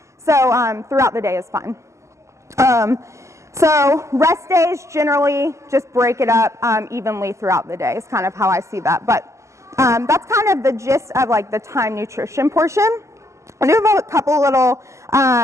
So throughout the day is fine. So rest days, generally just break it up evenly throughout the day is kind of how I see that. But that's kind of the gist of the time nutrition portion. I do have a couple little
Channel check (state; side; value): late; left; 0.14 ms